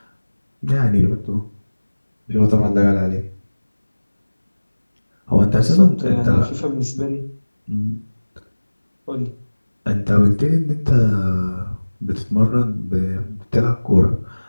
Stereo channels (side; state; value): both; inverted; correlation -1.00